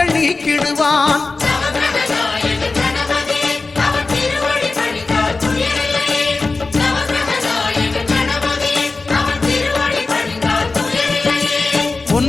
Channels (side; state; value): right; quieter; 3.7 dB